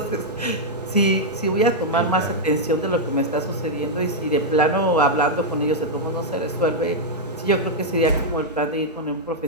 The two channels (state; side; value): normal; both; correlation -0.04